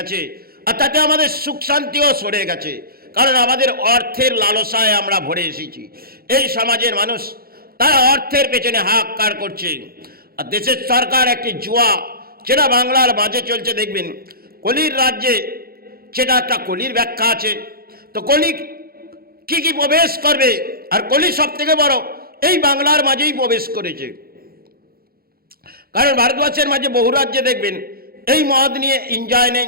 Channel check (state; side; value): late; left; 0.44 ms